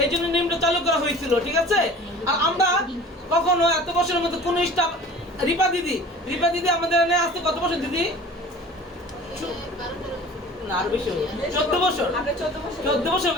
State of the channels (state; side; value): normal; both; correlation 0.43